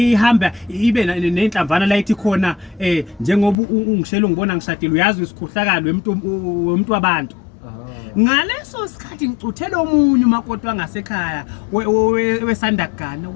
ibe nenhlamvana la ithi khona njengoba ungishela ungibona ngishadile uyazi isikhohlakalo wemuntu wabantu. Ngaleso sikhathi ngicuthela omunye umakoti wangasekhaya wesandagana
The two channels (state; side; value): drops out; right; at 3.6 s